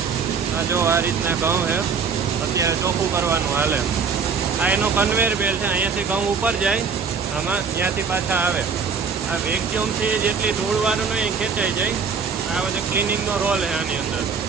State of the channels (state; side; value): quieter; left; 5.7 dB